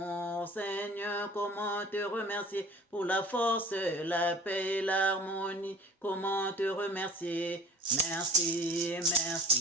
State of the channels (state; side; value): normal; both; correlation 0.44